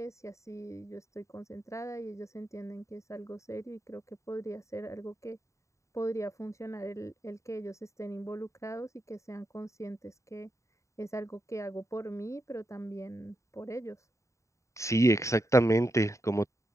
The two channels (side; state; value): right; late; 0.15 ms